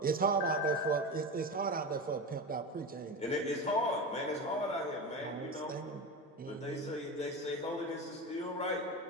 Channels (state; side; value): normal; both; correlation 0.24